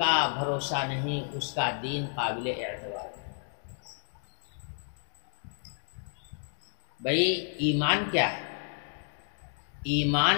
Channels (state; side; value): silent; right; digital silence